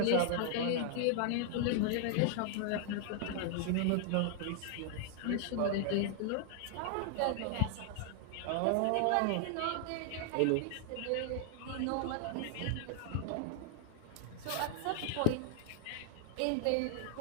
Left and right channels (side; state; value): both; different; correlation 0.00